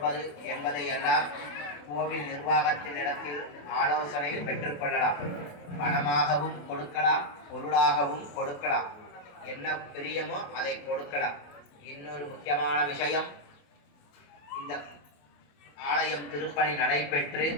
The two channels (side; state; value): right; late; 28 ms